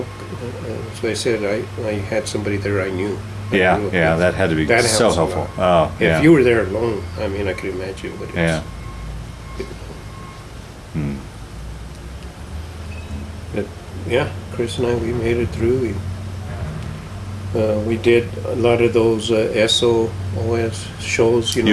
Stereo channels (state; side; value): identical; both; correlation 1.00